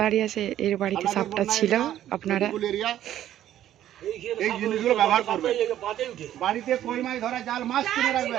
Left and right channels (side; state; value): left; quieter; 12.1 dB